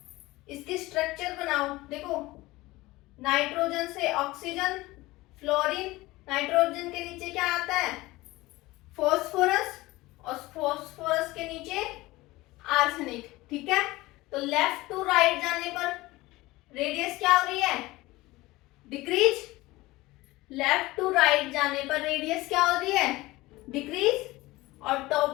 इसकी स्ट्रक्चर बनाओ, देखो नाइट्रोजन से ऑक्सीजन, फ्लोरीन, नाइट्रोजन के नीचे क्या आता है, फॉस्फोरस, और फॉस्फोरस के नीचे आर्सेनिक, ठीक है। तो लेफ्ट टू राइट जाने पर रेडियस क्या हो रही है, डिक्रीज, लेफ्ट टू राइट जाने पर रेडियस क्या हो रही है, डिक्रीज, और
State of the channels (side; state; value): right; quieter; 19.6 dB